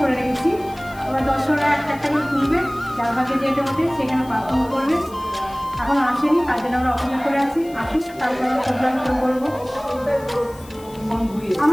করে রেখেছি। এবার দর্শকরা একটা একটা করে তুলবে, যার ভাগে যেটা ওঠে সেখানে পারফর্ম করবে। এখন আসেনি, তার জন্য আমরা অপেক্ষা করে আছি, আসুন তারপর আমরা প্রোগ্রাম শুরু করবো।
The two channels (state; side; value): noise; left; hiss, 22 dB below the sound